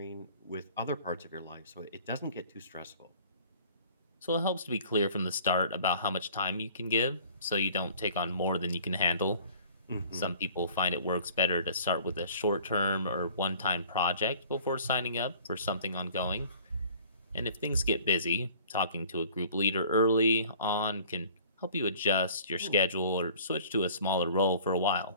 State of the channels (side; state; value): both; inverted; correlation -0.49